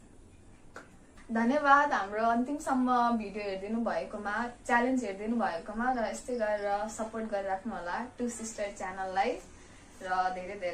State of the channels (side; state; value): both; identical; correlation 1.00